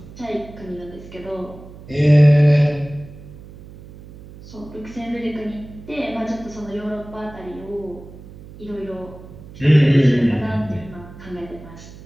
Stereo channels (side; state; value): right; noise; hum, 17 dB below the sound